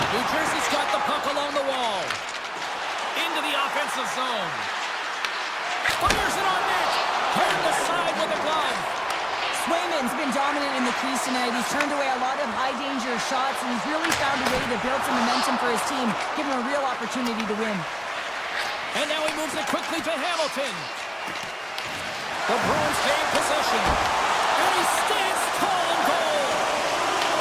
Jersey's got the puck along the wall. Into the offensive zone. Fires it on net. Turned aside with a glove. Swayman's been dominant in the crease tonight. He's turned away a lot of high-danger shots, and he's really found a way to build some momentum for his team, give him a real opportunity to win. And now he moves it quickly to Hamilton. The Bruins gain possession. And he stands tall in goal.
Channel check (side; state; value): both; identical; correlation 1.00